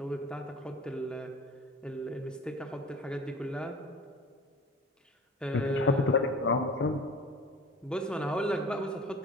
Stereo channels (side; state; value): both; normal; correlation 0.41